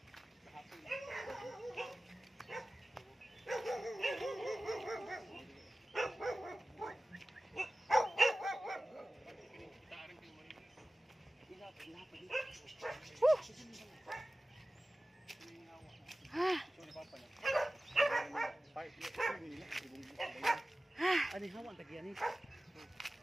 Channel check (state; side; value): normal; both; correlation 0.96